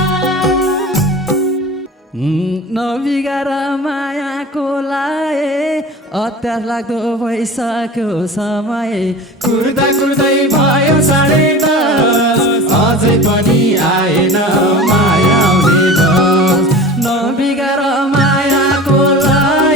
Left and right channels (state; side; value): normal; both; correlation 0.35